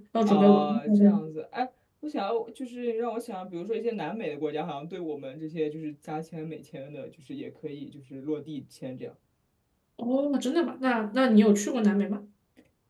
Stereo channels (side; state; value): both; identical; correlation 1.00